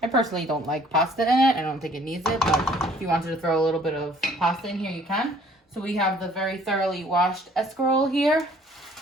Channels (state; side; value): normal; both; correlation 0.57